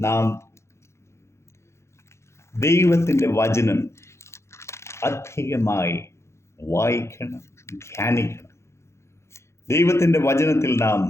നാം ദൈവത്തിൻ്റെ വചനം അധികമായി വായിക്കണം, ധ്യാനിക്കണം. ദൈവത്തിൻ്റെ വചനത്തിൽ നാം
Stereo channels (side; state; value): right; late; 0.13 ms